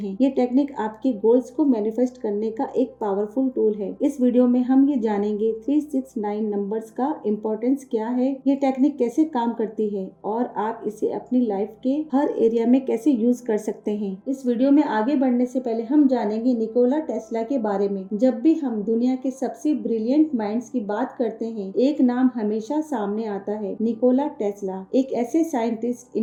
ये टेक्निक आपके गोल्स को मैनिफेस्ट करने का एक पावरफुल टूल है। इस वीडियो में हम ये जानेंगे 369 नंबर्स का इम्पोर्टेंस क्या है, ये टेक्निक कैसे काम करती है और आप इसे अपनी लाइफ के हर एरिया में कैसे यूज कर सकते हैं। इस वीडियो में आगे बढ़ने से पहले हम जानेंगे निकोला टेस्ला के बारे में। जब भी हम दुनिया के सबसे ब्रिलियंट माइंड्स की बात करते हैं, एक नाम हमेशा सामने आता है, निकोला टेस्ला। एक ऐसे साइंटिस्ट,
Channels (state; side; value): identical; both; correlation 1.00